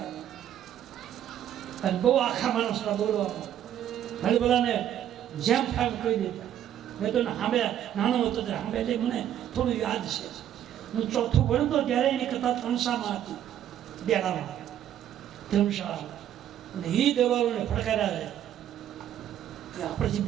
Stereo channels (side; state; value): left; quieter; 10.9 dB